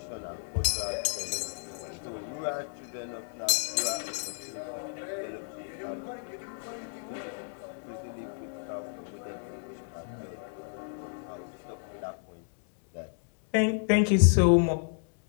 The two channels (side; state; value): right; silent; digital silence